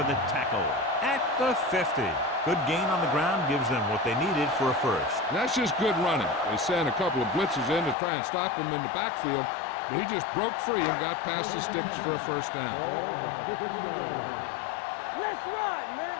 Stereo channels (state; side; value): drops out; right; at 8.0 s